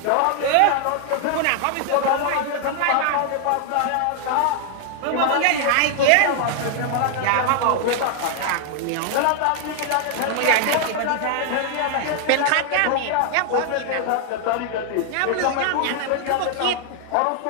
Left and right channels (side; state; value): both; different; correlation 0.00